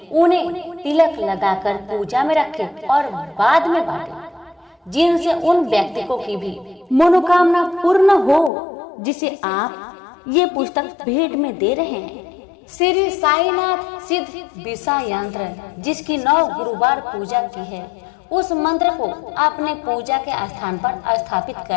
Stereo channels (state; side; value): drops out; right; at 8.5 s